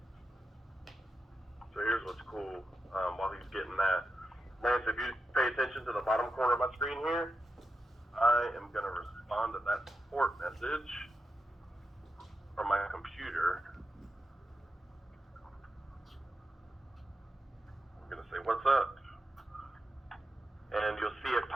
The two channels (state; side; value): normal; both; correlation 0.88